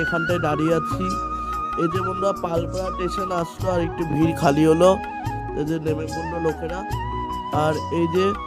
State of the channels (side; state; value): both; identical; correlation 1.00